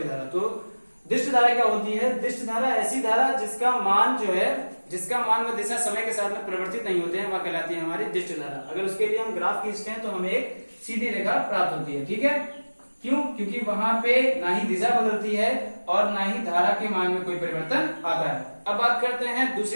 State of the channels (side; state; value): both; inverted; correlation -1.00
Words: धारा। तो दिष्ट धारा क्या होती है? दिष्ट धारा ऐसी धारा जिसका मान जो है, जिसका मान व दिशा समय के साथ में परिवर्तित नहीं होते हैं, वह कहलाती है हमारी दिष्ट धारा। अगर उसके लिए हम ग्राफ खींचते हैं तो हमें एक सीधी रेखा प्राप्त होती है। ठीक है, क्यों? क्योंकि वहां पे ना ही दिशा बदलती है और ना ही धारा के मान में कोई परिवर्तन आता है। अब बात करते हैं